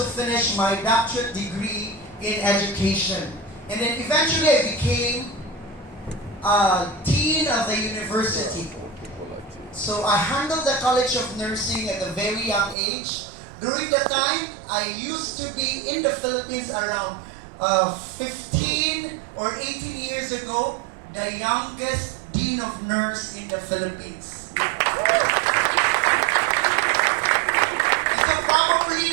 finished my doctorate degree in education. And then eventually I became dean of the university. So I handled the College of Nursing at a very young age. During the time, I used to be in the Philippines around 15 or 18 years ago, the youngest dean of nurse in the Philippines. So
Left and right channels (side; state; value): left; drops out; at 12.8 s